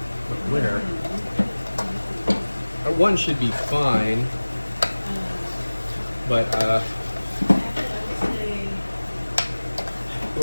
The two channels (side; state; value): both; inverted; correlation -1.00